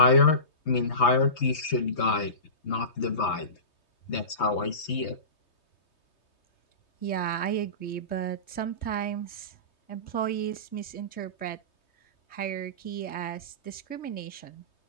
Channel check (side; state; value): right; late; 3.2 ms